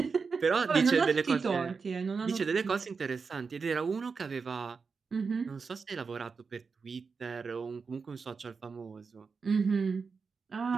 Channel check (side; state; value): left; quieter; 5.1 dB